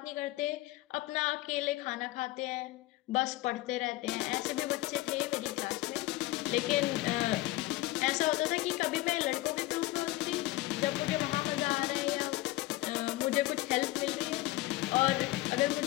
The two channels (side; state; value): right; quieter; 18.1 dB